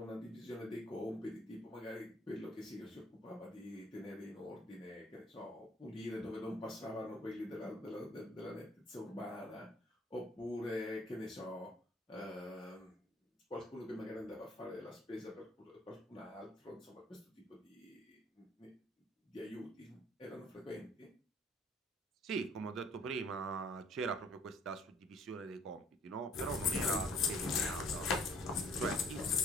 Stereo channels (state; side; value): normal; both; correlation 0.58